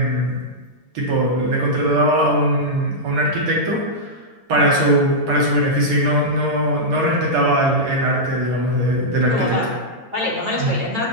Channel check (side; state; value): left; late; 8.8 ms